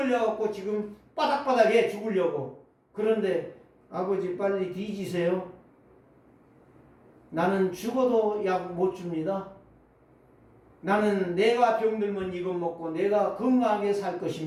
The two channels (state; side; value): identical; both; correlation 1.00